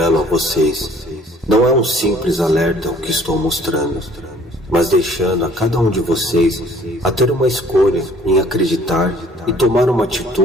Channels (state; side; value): normal; both; correlation 0.55